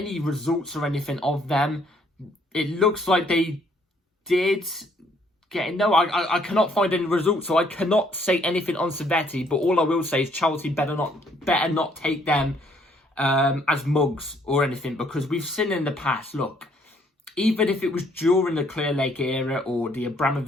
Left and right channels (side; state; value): both; normal; correlation 0.66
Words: results or anything of them. It looks like they did get... No, I cannot find any results, so I cannot say anything on Servette. But all I will say is Chelsea better not take them as mugs or anything, because we've seen in the past, look, even if it was during the Clear Lake era or the